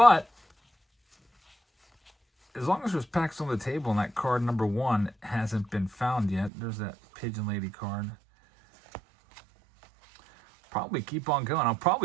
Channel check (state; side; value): drops out; left; at 6.5 s